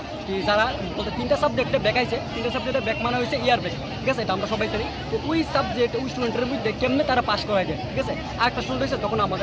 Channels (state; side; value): identical; both; correlation 1.00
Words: কি যারা বলতে 3টা সাবজেক্টে ব্যাক আইছে, 3টা সাবজেক্টে ব্যাক মানে হয়েছে ইয়ার ব্যাক, ঠিক আছে, এটা আমরা সবাই জানি। তো ওই সাবজেক্ট ওই স্টুডেন্টের মধ্যে কেমনে তারা পাস করায় যায়, ঠিক আছে। আর একটা স্টুডেন্ট হয়েছে তখন